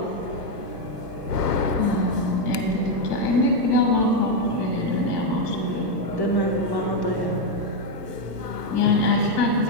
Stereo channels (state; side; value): late; right; 1.3 ms